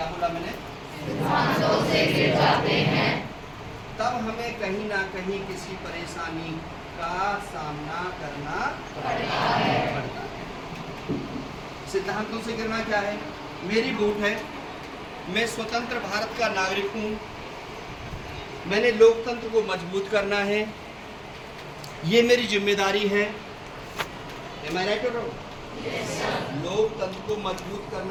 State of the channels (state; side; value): identical; both; correlation 1.00